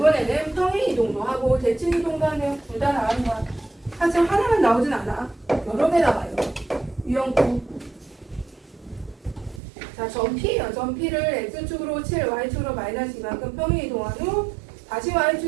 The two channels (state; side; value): drops out; left; at 9.6 s